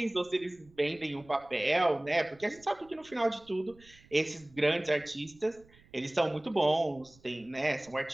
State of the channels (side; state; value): right; noise; rumble, 27 dB below the sound